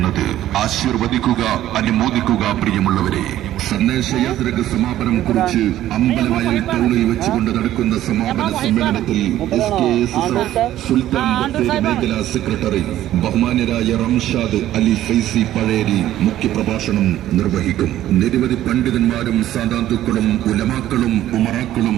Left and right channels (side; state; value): left; quieter; 13.2 dB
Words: ആശീർവദിക്കുക, അനുമോദിക്കുക പ്രിയമുള്ളവരെ. സന്ദേശയാത്രക്ക് സമാപനം കുറിച്ച് അമ്പലവയൽ ടൗണിൽ വെച്ചുകൊണ്ട് നടക്കുന്ന സമാപന സമ്മേളനത്തിൽ സുൽത്താൻ ബത്തേരി മേഖലാ സെക്രട്ടറി ബഹുമാന്യരായ റംഷാദ് അലി ഫൈസി പഴേരി മുഖ്യപ്രഭാഷണം നിർവഹിക്കും. നിരവധി പണ്ഡിതന്മാരും സാദാത്തുക്കളും ഉലമാക്കളും ഉമറാക്കളും